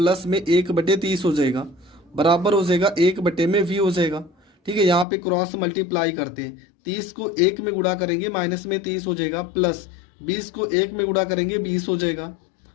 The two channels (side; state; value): right; drops out; at 5.1 s